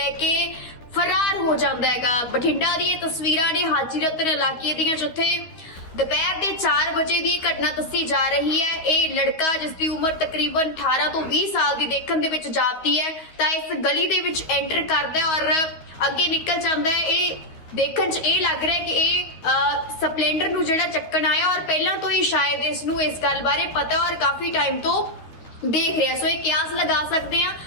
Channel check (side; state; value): right; late; 12 ms